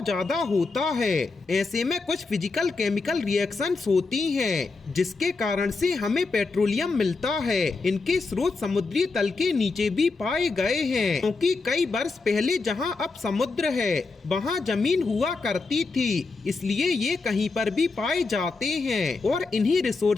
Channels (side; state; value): right; quieter; 4.0 dB